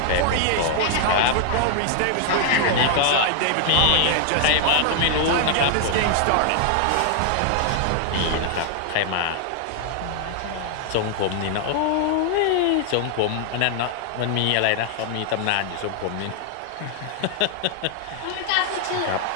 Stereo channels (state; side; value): different; both; correlation 0.00